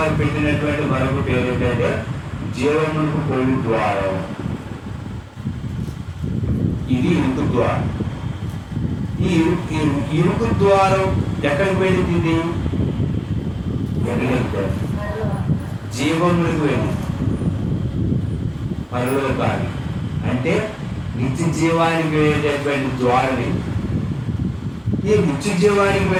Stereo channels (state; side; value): identical; both; correlation 1.00